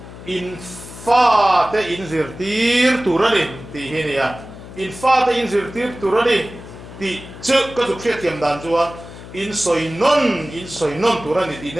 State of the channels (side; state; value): left; noise; hum, 15 dB below the sound